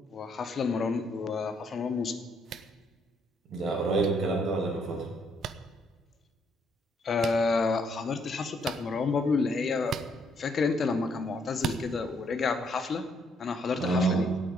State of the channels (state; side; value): normal; both; correlation 0.71